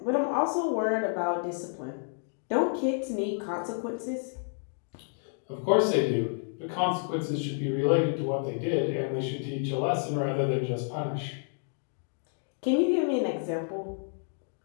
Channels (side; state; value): right; silent; 58 dB below the other